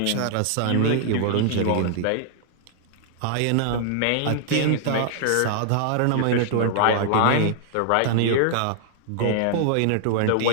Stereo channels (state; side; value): different; both; correlation -0.01